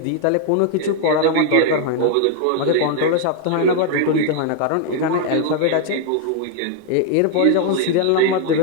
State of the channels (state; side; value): different; both; correlation 0.00